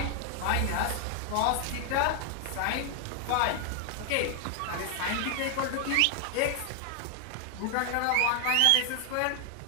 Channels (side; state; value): both; different; correlation 0.00